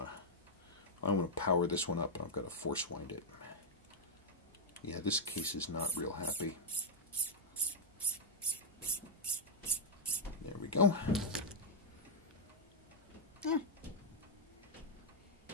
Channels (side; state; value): both; normal; correlation -0.03